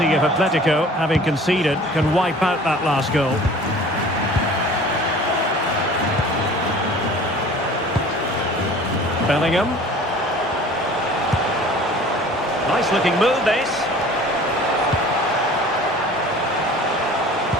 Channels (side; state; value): both; normal; correlation 0.46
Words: if Atletico, having conceded, can wipe out that last goal. Bellingham. Nice looking move, this.